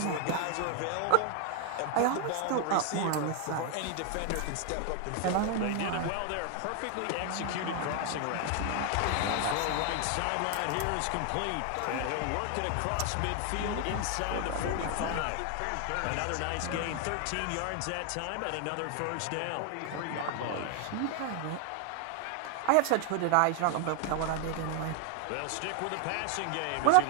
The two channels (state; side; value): different; both; correlation 0.00